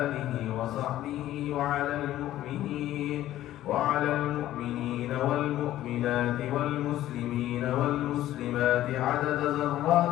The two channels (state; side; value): quieter; right; 13.7 dB